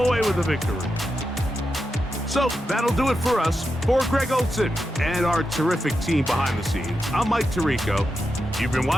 with the victory. So that'll do it for us. For Greg Olson and our terrific team behind the scenes, I'm Mike Tirico. You've been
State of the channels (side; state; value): both; normal; correlation 0.88